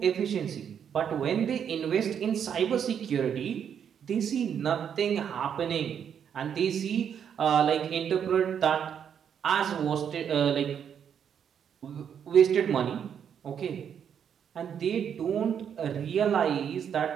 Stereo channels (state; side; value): quieter; left; 8.2 dB